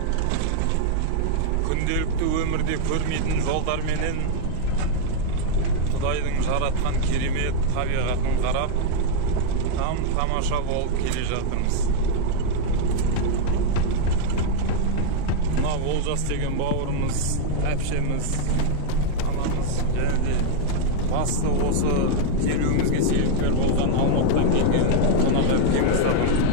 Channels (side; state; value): both; different; correlation 0.00